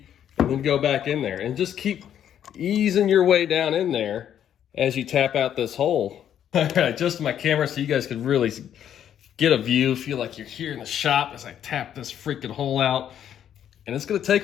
and then go back in there. And just keep easing your way down in there as you tap out this hole. All right, adjust my camera so you guys can really get a view, feel like you're here in the shop as I tap this freaking hole out. And it's gonna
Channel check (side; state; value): right; quieter; 9.9 dB